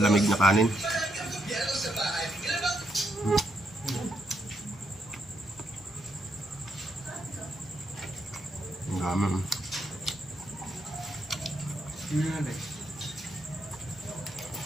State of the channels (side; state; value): both; normal; correlation 0.78